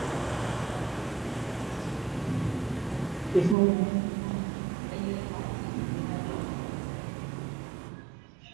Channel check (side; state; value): left; drops out; at 3.6 s